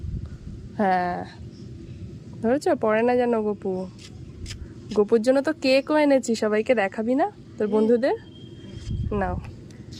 হ্যাঁ ধরেছ, পড়ে না যেন গপু। গপুর জন্য তো কেকও এনেছি, সবাইকে দেখাবি না তোর বন্ধুদের? নাও,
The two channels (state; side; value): identical; both; correlation 1.00